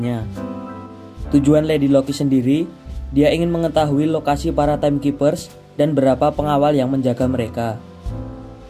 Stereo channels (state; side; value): identical; both; correlation 1.00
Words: Tujuan Lady Loki sendiri, dia ingin mengetahui lokasi para Timekeepers dan berapa pengawal yang menjaga mereka.